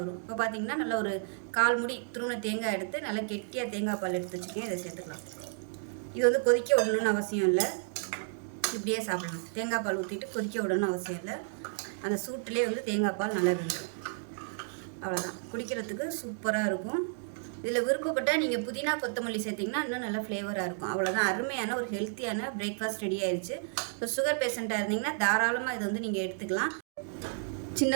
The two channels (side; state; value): left; silent; digital silence